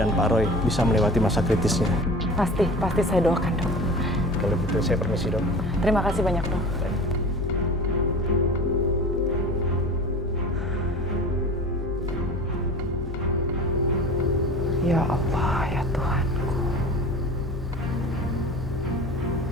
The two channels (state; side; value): noise; left; hum, 7 dB below the sound